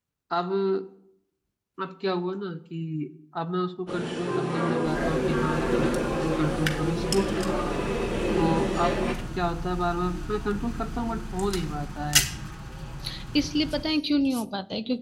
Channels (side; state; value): both; identical; correlation 1.00